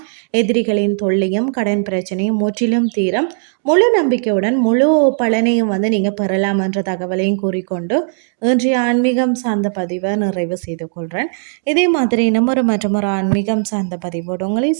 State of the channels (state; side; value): silent; left; digital silence